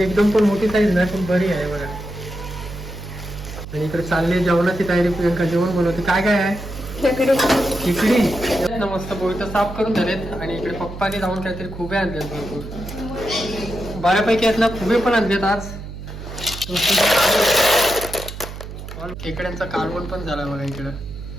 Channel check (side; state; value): right; noise; hum, 11 dB below the sound